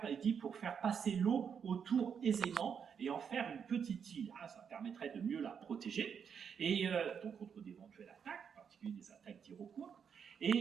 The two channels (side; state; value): left; quieter; 7.1 dB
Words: passer l'eau autour aisément et en faire une petite île. Hein, ça permettrait de mieux la protéger, et donc contre d'éventuelles attaques, en particulier des attaques d'Iroquois.